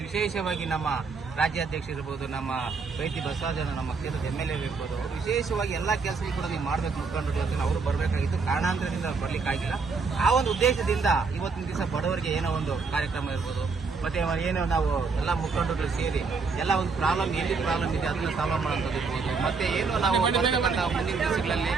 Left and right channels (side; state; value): left; quieter; 4.7 dB